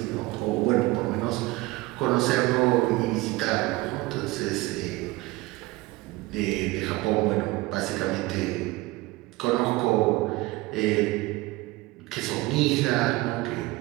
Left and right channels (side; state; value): left; quieter; 20.7 dB